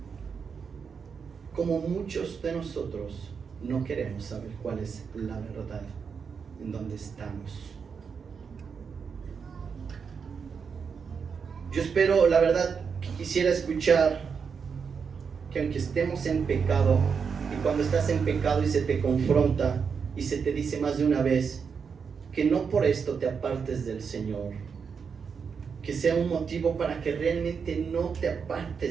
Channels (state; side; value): quieter; left; 6.1 dB